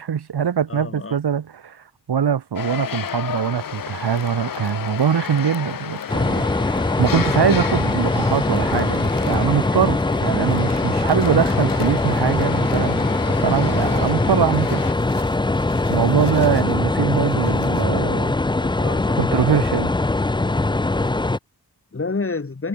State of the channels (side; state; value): both; normal; correlation 0.38